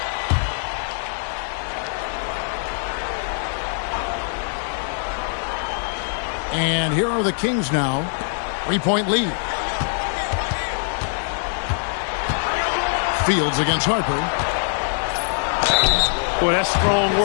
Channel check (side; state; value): right; silent; digital silence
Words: And here are the Kings now. 3-point lead. Fields against Harper. Boy, that's strong